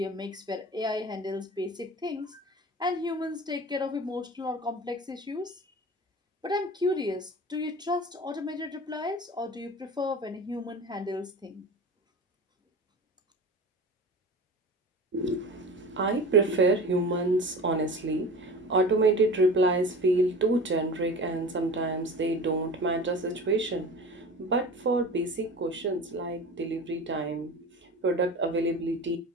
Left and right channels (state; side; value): normal; both; correlation 0.35